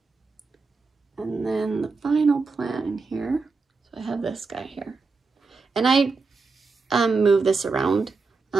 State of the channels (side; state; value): left; quieter; 4.3 dB